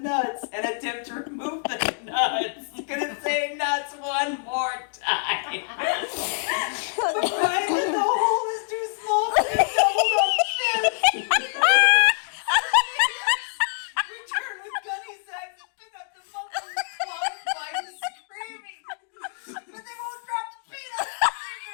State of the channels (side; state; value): right; silent; digital silence